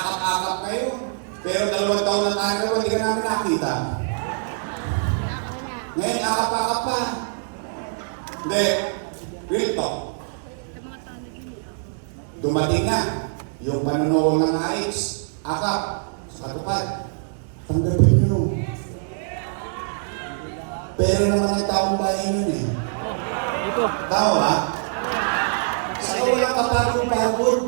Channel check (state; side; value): silent; left; 58 dB below the other